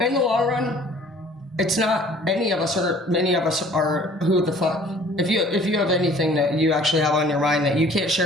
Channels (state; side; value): normal; both; correlation 0.52